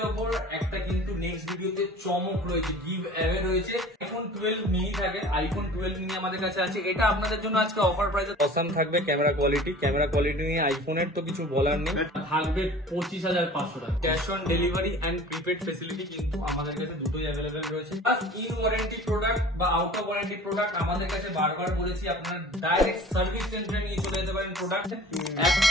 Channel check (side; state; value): both; normal; correlation 0.44